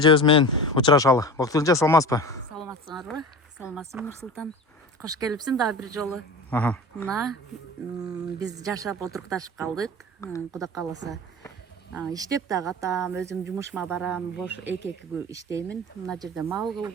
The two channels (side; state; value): both; normal; correlation 0.33